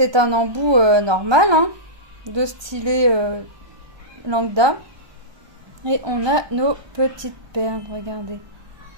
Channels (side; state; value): left; late; 1.2 ms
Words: un embout normal, hein, de stylet lambda. Et on a nos petites perles, regardez.